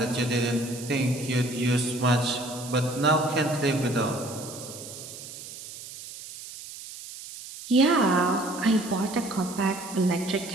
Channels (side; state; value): right; noise; hiss, 13 dB below the sound